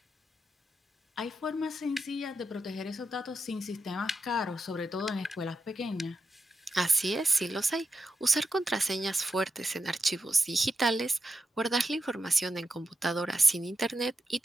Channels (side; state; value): both; normal; correlation 0.87